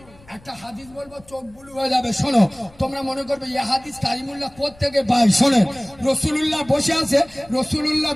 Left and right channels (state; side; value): noise; left; rumble, 25 dB below the sound